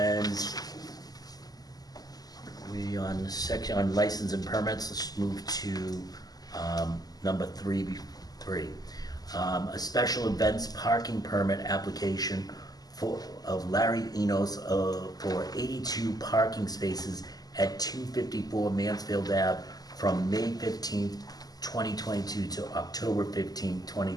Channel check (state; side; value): late; right; 0.18 ms